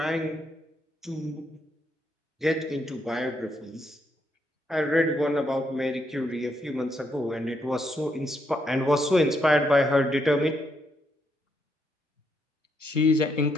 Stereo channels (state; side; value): normal; both; correlation 0.77